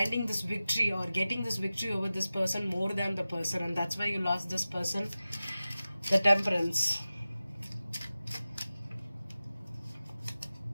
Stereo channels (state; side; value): inverted; both; correlation -0.95